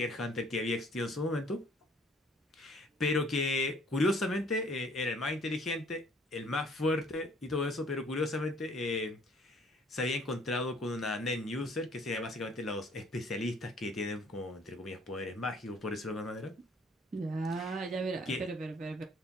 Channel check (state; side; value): normal; both; correlation 0.58